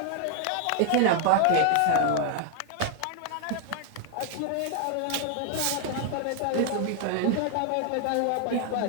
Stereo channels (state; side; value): different; both; correlation 0.00